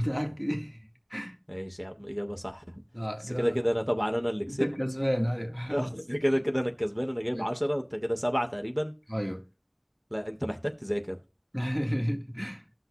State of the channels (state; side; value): identical; both; correlation 1.00